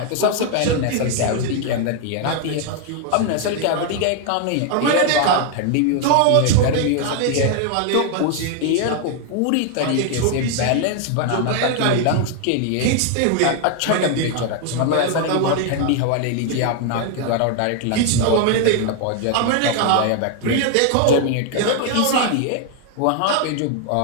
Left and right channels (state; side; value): different; both; correlation 0.00